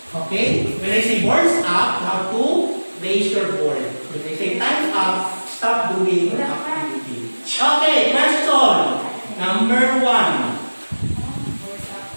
Okay? When I say boards up, you have to raise your board. When I say time's up, stop doing the activity. Okay, question. Number 1.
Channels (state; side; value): inverted; both; correlation -1.00